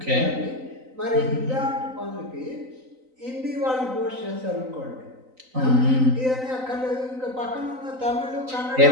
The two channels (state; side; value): late; left; 3.9 ms